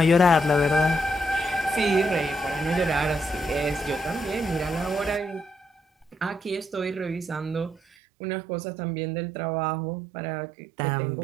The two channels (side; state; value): left; drops out; at 7.8 s